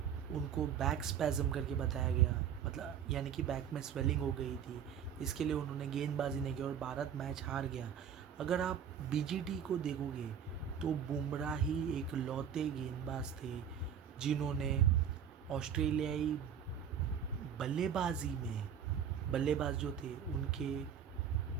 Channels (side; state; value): left; quieter; 8.3 dB